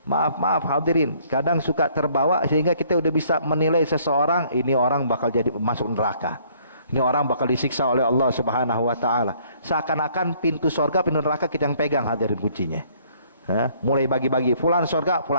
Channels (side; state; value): both; inverted; correlation -0.62